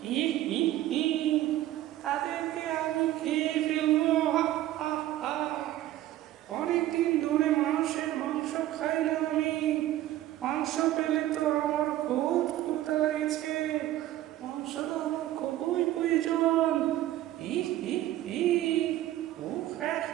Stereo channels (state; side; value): quieter; left; 14.2 dB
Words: ই, ই, ই, তাদেরকে আমি খেয়ে ফেলবো। হা, হা, হা। অনেকদিন ধরে মানুষের মাংস খাই না আমি। মাংস পেলে তো আমার খুব ক্ষুধা লেগেছে। মাংস তো আমার খুবই প্রয়োজন। ই, ই, ই, উফ, হ্যাঁ,